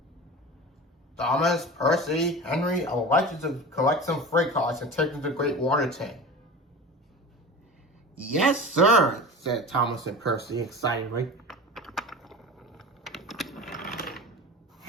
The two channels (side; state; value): both; normal; correlation 0.33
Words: "Thomas, Percy, Henry, I would like you to collect some freight cars and take them to the Great Water Tank." "Yes, sir," said Thomas and Percy excitedly.